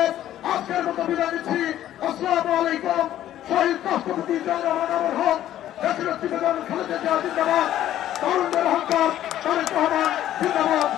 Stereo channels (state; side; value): quieter; right; 12.4 dB